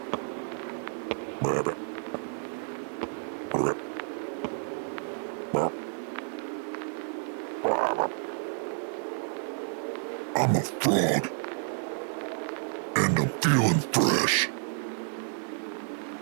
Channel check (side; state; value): left; silent; digital silence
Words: Ribbit. Ribbit. I'm a frog. And I'm feeling fresh.